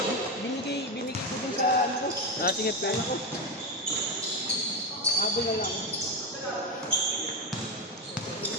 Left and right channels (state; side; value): normal; both; correlation 0.13